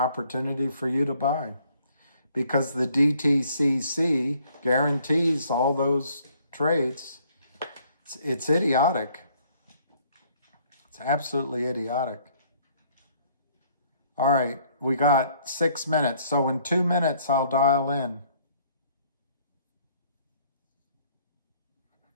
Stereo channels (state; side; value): inverted; both; correlation -0.63